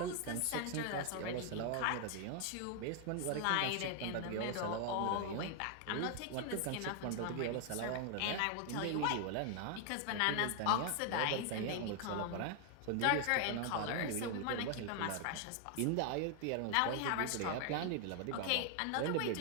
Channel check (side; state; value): both; different; correlation 0.00